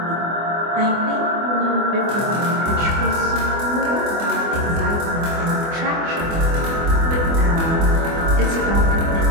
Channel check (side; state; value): left; late; 24 ms